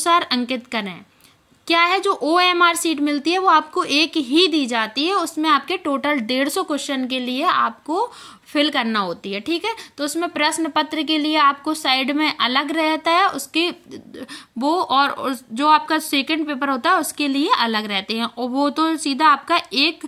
अंकित करें। क्या है, जो OMR शीट मिलती है वो आपको एक ही दी जाती है, उसमें आपके टोटल 150 क्वेश्चन के लिए आपको फिल करना होती है। ठीक है, तो उसमें प्रश्न पत्र के लिए आपको साइड में अलग रहता है उसके वो, और जो आपका सेकंड पेपर होता है उसके लिए अलग रहते हैं, और वो तो सीधा आपका एक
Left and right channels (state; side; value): identical; both; correlation 1.00